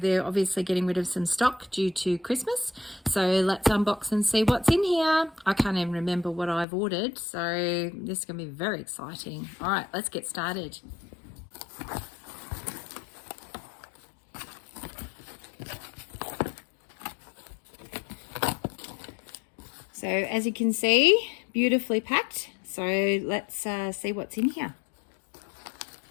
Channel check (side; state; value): right; drops out; at 6.7 s